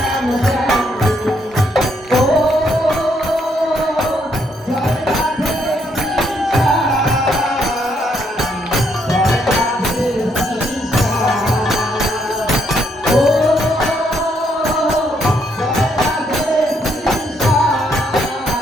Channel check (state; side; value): normal; both; correlation 0.73